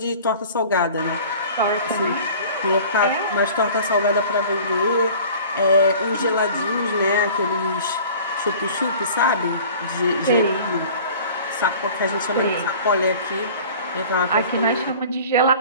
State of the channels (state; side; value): inverted; both; correlation -0.44